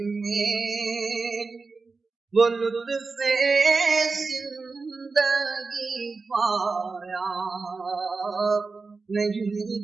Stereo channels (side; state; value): left; quieter; 4.2 dB